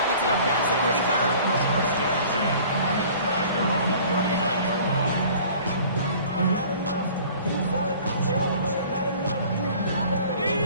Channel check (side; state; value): both; inverted; correlation -0.48